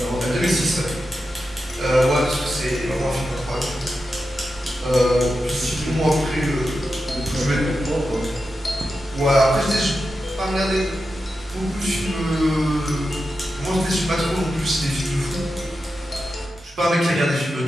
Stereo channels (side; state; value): both; normal; correlation 0.90